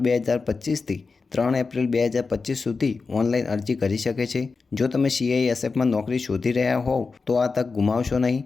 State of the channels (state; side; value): quieter; right; 4.4 dB